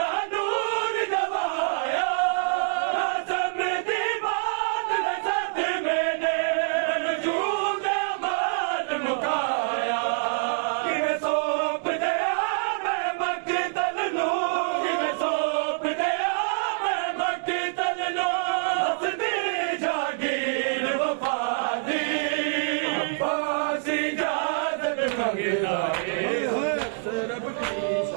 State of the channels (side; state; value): left; silent; digital silence